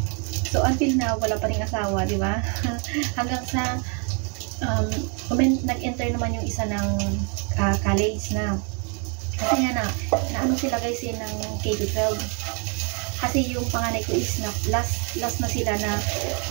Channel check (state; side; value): quieter; left; 37.4 dB